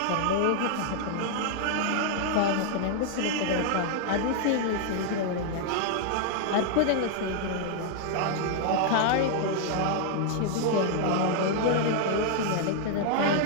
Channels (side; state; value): both; different; correlation 0.00